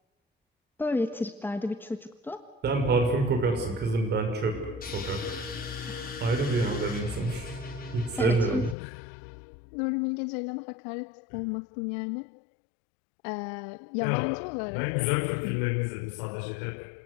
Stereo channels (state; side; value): drops out; right; at 8.8 s